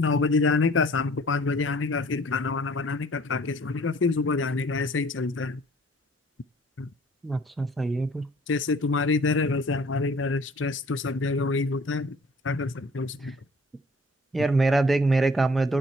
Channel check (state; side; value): normal; both; correlation 0.53